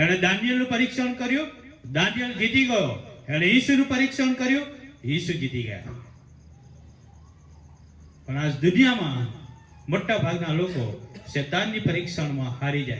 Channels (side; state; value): both; identical; correlation 1.00